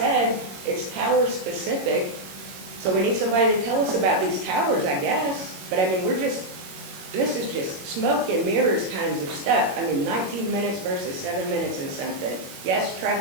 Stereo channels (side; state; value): left; late; 21 ms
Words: it's tower specific. So we need somebody to tell us about these towers, I guess. But I mean, we're just this is just smoke and mirrors kinds of stuff. I mean, 19 minutes versus 7 minutes and something. Yes,